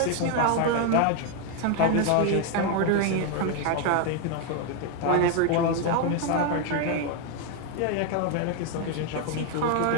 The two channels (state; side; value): different; both; correlation 0.01